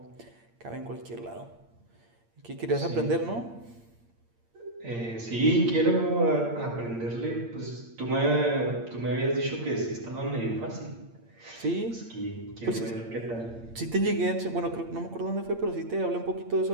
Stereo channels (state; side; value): late; left; 8.7 ms